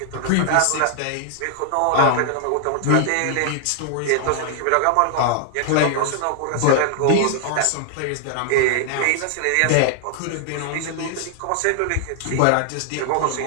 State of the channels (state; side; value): different; both; correlation -0.01